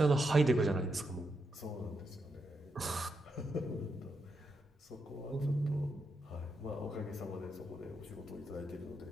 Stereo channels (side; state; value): both; normal; correlation 0.83